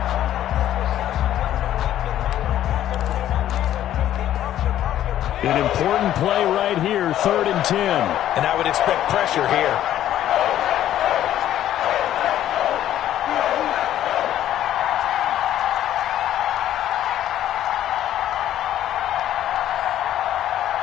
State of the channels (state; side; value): quieter; right; 12.0 dB